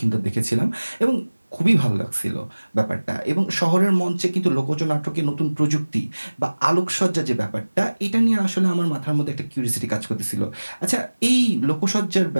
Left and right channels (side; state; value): both; inverted; correlation -1.00